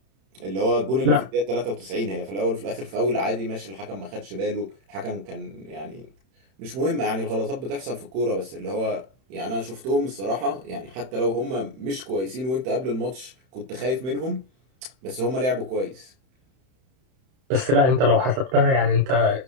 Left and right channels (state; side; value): late; left; 31 ms